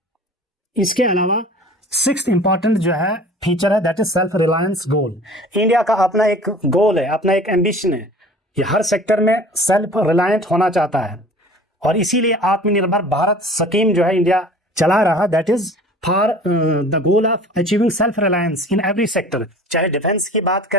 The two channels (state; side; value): normal; both; correlation 0.45